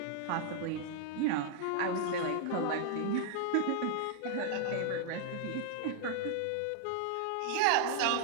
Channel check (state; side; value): different; both; correlation -0.01